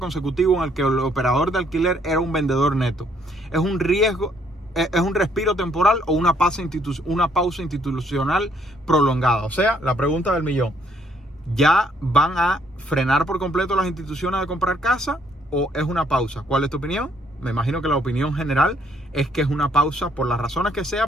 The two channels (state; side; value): normal; both; correlation 0.67